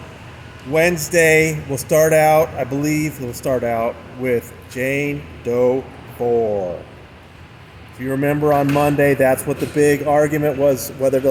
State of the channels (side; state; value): both; identical; correlation 1.00